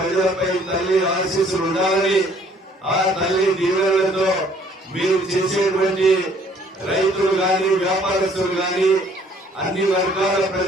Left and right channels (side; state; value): both; normal; correlation 0.60